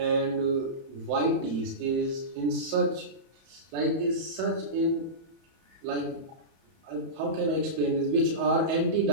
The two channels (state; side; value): late; left; 30 ms